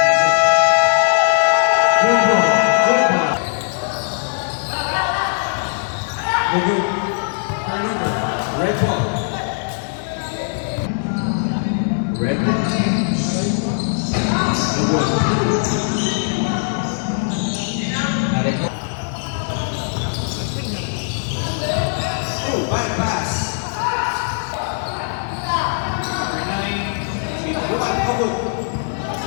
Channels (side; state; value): right; silent; digital silence